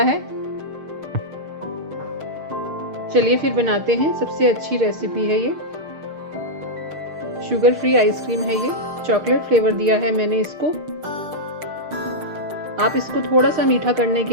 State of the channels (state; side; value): late; left; 6.6 ms